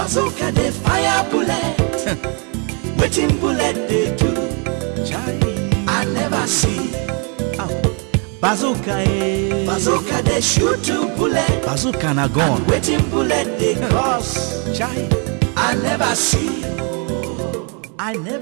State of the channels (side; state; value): left; quieter; 36.2 dB